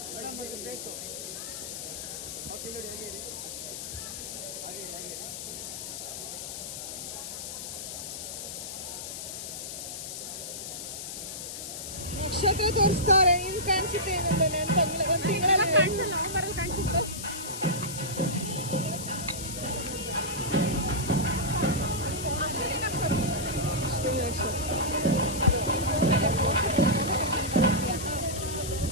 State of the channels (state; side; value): noise; left; hiss, 7 dB below the sound